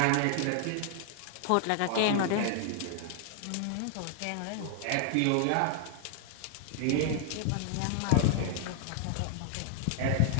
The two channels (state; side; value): different; both; correlation -0.01